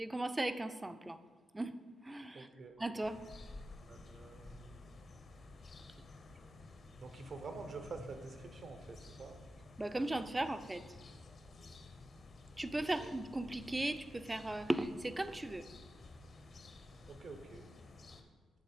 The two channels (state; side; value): normal; both; correlation 0.95